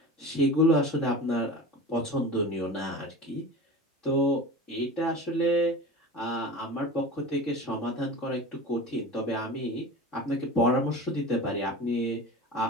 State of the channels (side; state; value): both; normal; correlation 0.33